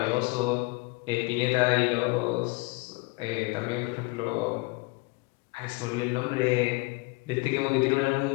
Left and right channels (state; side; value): quieter; right; 26.0 dB